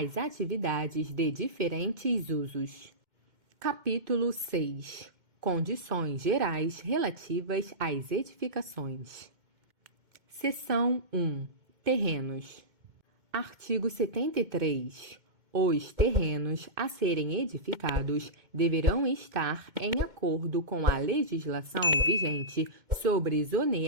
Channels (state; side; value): late; left; 2.2 ms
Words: atividades de diferentes usos. Capítulo 6. Condições gerais relativas às edificações. Seção 1. Terrenos. Artigo 73. Os terrenos a serem edificados deverão estar em acordo com a legislação vigente sobre